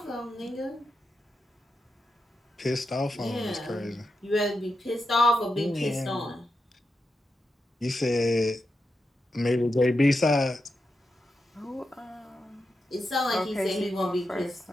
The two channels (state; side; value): normal; both; correlation 0.87